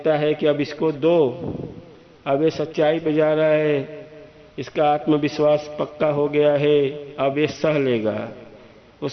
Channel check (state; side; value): identical; both; correlation 1.00